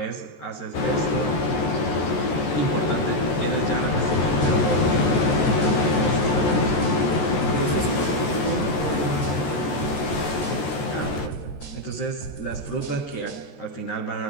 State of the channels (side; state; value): right; late; 14 ms